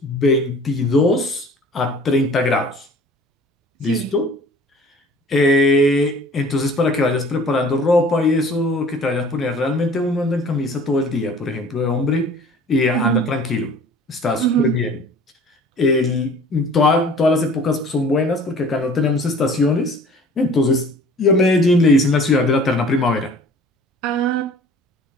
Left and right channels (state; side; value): normal; both; correlation 0.48